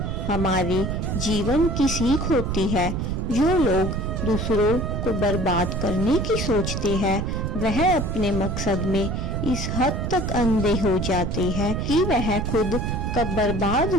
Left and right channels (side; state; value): right; noise; rumble, 2 dB below the sound